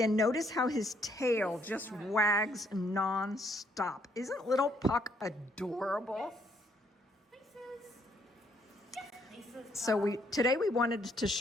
notice how his tail just wags non-stop. Isn't little Puck adorable? So today we wanted to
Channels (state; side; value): normal; both; correlation 0.70